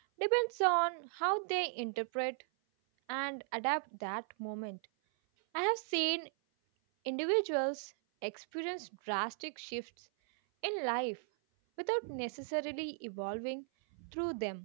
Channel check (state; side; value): silent; left; 53 dB below the other